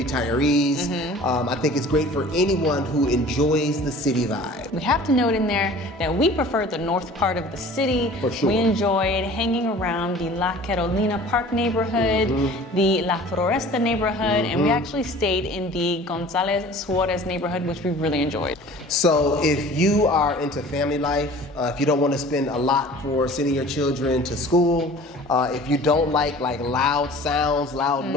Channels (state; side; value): normal; both; correlation 0.45